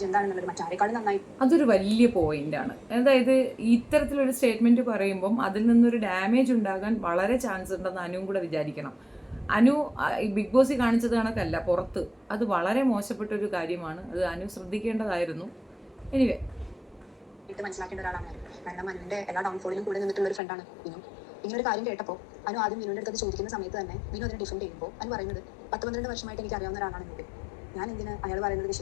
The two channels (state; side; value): drops out; right; at 20.4 s